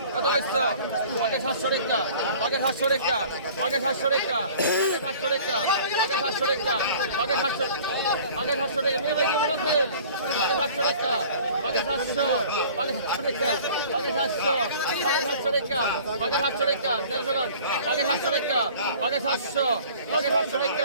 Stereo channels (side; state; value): both; inverted; correlation -0.47